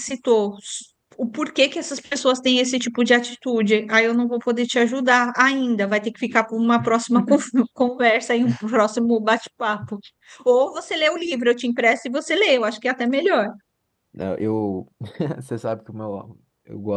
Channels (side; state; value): both; identical; correlation 1.00